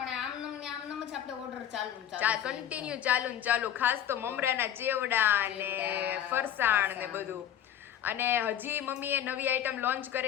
આમનમ જ આપણે ઓર્ડર કન્ટિન્યુ ચાલુ ખાસ તો મમરાના ચેવડા ને ફરસાણ ને બધું. અને હજી મમ્મીએ નવી આઈટમ લોન્ચ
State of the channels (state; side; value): quieter; right; 10.6 dB